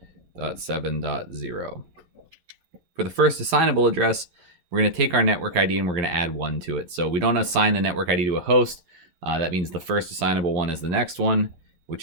For the first assignable address, we're going to take our network ID and we're going to add 1 to it. So we don't assign the network ID to a host. That means the first assignable one is the next one,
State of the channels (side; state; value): left; late; 11 ms